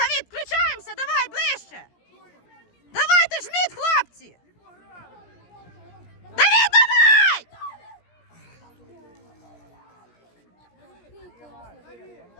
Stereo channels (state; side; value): late; right; 17 ms